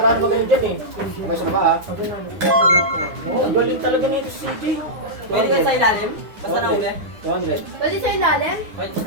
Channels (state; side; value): late; left; 9.9 ms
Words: magaling dyan eh. Okay, sa baba ha. Oh, ang galing talaga nito si CJ. Pwede ka sa ilalim? Basta nahuli? 200. Pwede sa ilalim? Pwede